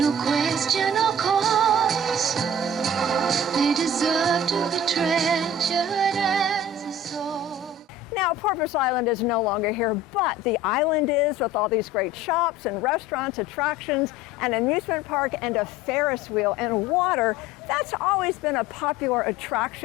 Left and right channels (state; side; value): normal; both; correlation 0.43